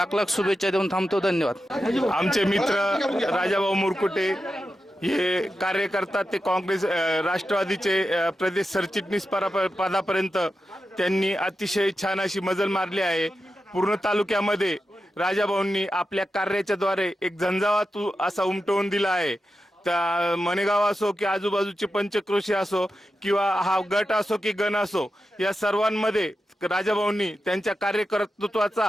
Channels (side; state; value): both; normal; correlation 0.90